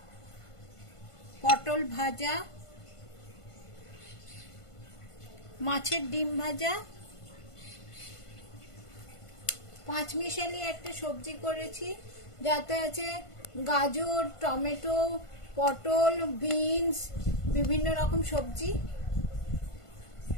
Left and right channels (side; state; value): right; late; 1.5 ms